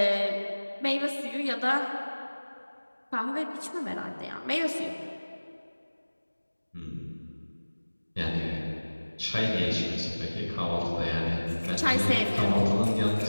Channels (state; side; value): inverted; both; correlation -1.00